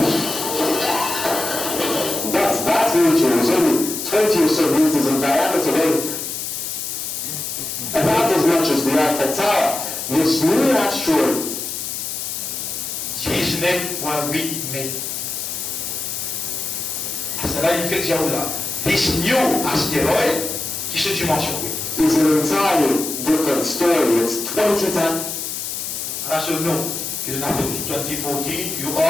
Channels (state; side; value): noise; left; hiss, 5 dB below the sound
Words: That meteor was only 20 or so meters in diameter, about as much as the Eiffel Tower. This new asteroid 19,8 mètres. À cela, il fait que j'ai là. This new asteroid, qui se dimension. is an entirely different story. It's 20 times. À ce nom, que je n'appelle 2014, you